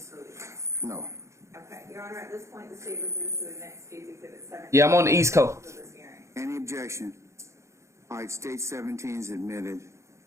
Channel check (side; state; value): left; late; 0.14 ms